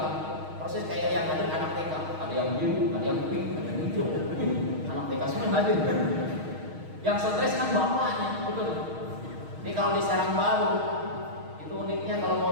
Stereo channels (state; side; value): late; left; 6.4 ms